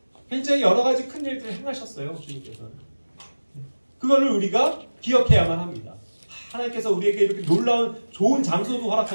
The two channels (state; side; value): inverted; both; correlation -1.00